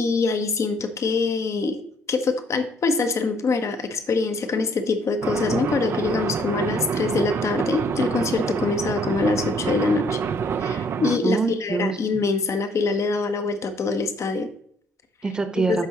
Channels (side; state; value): both; normal; correlation 0.64